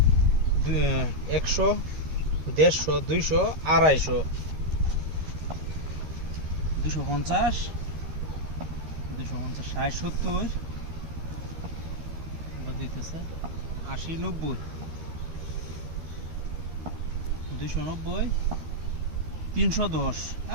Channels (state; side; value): late; left; 13 ms